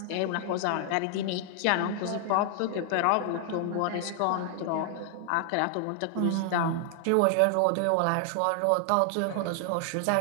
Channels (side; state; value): both; different; correlation 0.00